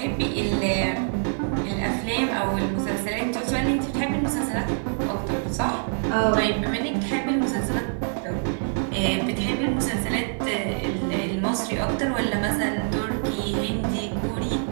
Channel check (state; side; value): silent; left; 62 dB below the other